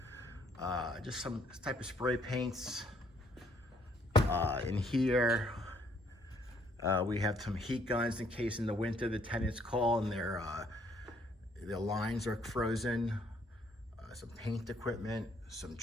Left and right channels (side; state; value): both; normal; correlation 0.66